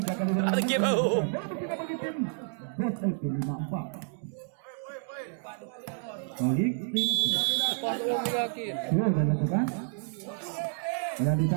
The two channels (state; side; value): silent; left; 58 dB below the other